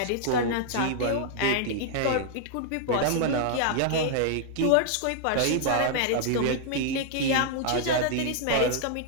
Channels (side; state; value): both; different; correlation -0.01